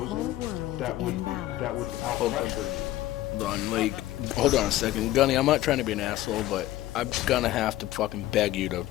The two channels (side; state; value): right; quieter; 15.2 dB